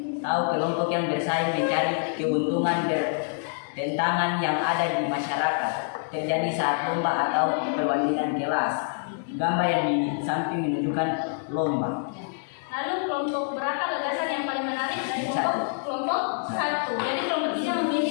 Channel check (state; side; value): silent; right; digital silence